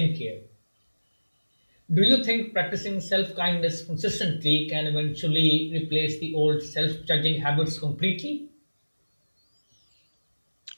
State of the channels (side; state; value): both; inverted; correlation -1.00